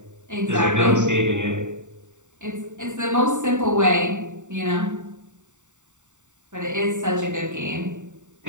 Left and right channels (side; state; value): left; late; 0.85 ms